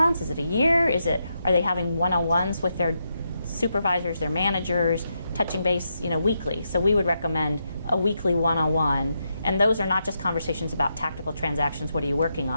Is it a year? Are they having one-on-ones with their supervisors, their managers, touching base, weekly? So we would recommend a weekly one-on-one, and those are not just conversations about tactical transactions, what are you working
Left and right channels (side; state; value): both; inverted; correlation -0.83